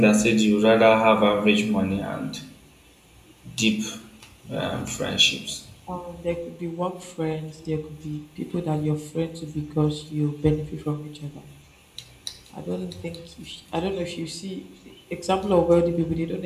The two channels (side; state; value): both; identical; correlation 1.00